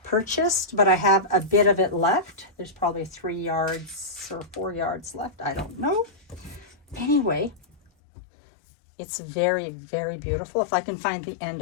purchased, but I have a bit of it left. There's probably 3 yards or 4 yards left. I don't know. Anyway, it's very, very beautiful. If I can find the end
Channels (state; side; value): drops out; right; at 7.9 s